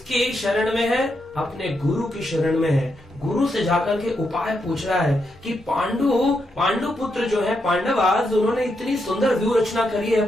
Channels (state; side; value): normal; both; correlation 0.82